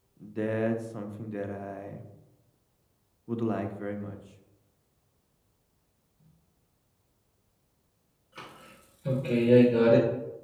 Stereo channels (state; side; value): identical; both; correlation 1.00